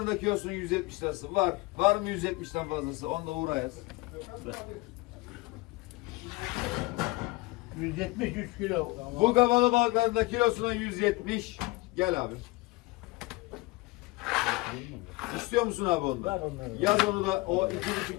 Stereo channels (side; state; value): right; quieter; 22.8 dB